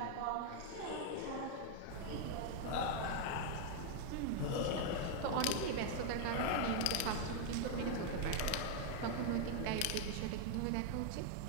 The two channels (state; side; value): different; both; correlation 0.00